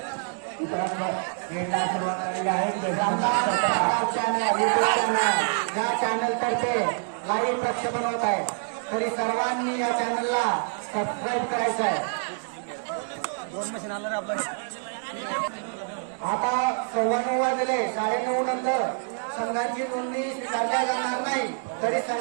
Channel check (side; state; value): left; silent; digital silence